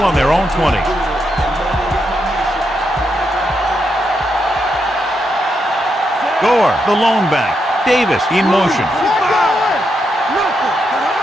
on their own 20. Gore, the lone back. Davis in motion.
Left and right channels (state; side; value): normal; both; correlation 0.82